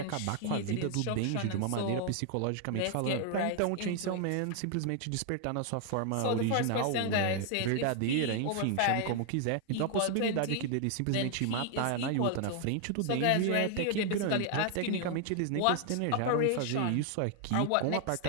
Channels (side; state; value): both; different; correlation 0.00